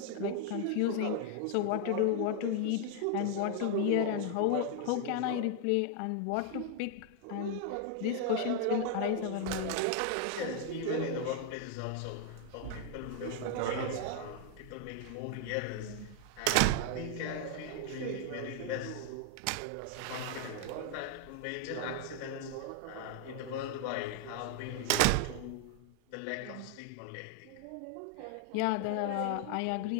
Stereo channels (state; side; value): different; both; correlation 0.00